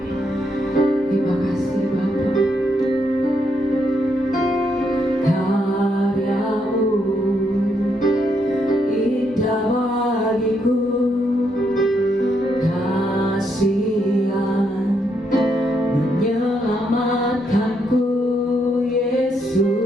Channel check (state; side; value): normal; both; correlation 0.77